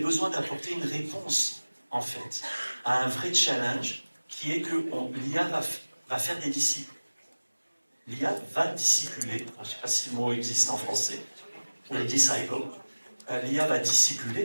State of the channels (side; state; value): both; inverted; correlation -1.00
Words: d'apporter une réponse, en fait, à un vrai challenge, qui est que l'IA va faire des disciples. L'IA va discipuler, je ne sais pas si le mot existe en français, ou les disciples. L'IA va